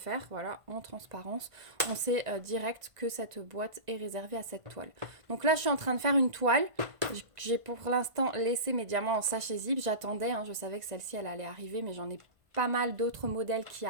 voilà, en transparence. On sait direct que cette boîte est réservée à cette toile. Donc là, je suis en train de faire une toile. J'ai pour l'instant laissé mes diamants en sachet zip. J'attendais, hein, je savais que celle-ci, elle allait arriver, mais j'en ai pas mal d'autres modèles qui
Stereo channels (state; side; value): late; left; 1.5 ms